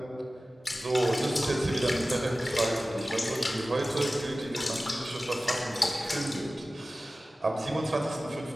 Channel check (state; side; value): normal; both; correlation 0.96